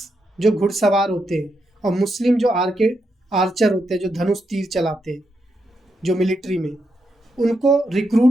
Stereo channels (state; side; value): normal; both; correlation 0.82